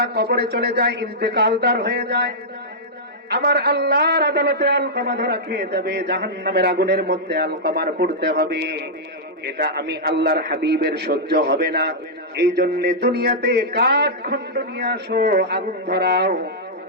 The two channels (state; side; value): normal; both; correlation -0.09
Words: কবরে চলে যায়, ইন্তেকালদার হয়ে যায়, আমার আল্লাহর আদালতে আলকামা ধরা খেয়ে যাবে, জাহান্নামের আগুনের মধ্যে আলকামার পড়তে হবে। এটা আমি আল্লাহর হাবিবের সহ্য হবে না। এই জন্য দুনিয়াতে কাঠ খণ্ড নিয়ে আসো, আগুন ধরাও,